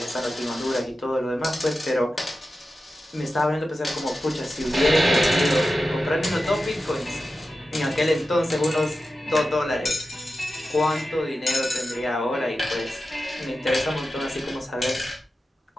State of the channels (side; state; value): both; normal; correlation 0.92